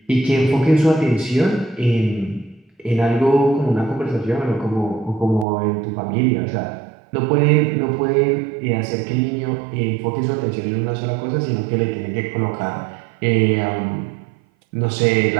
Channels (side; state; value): left; drops out; at 5.5 s